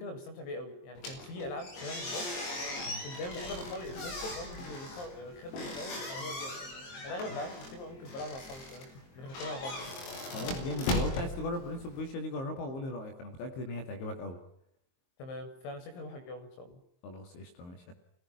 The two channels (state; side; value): late; right; 23 ms